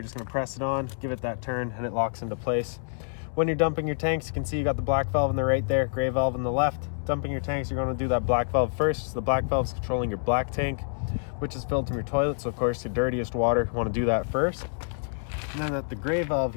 just going to press it on, give it that turn, and it locks into place. When you're dumping your tanks, you can see you got the black valve on the right there, gray valve on the left. Dumping your tanks, you're going to do that black valve first. So the black valve is controlling your black tank, which is filled from your toilet. So of course, your dirtiest water, you want to do that first. And then at the gray valve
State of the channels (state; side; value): silent; right; digital silence